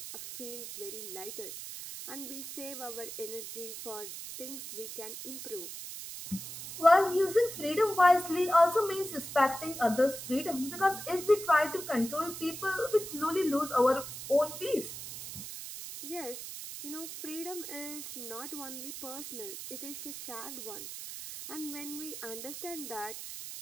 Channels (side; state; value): right; noise; hiss, 9 dB below the sound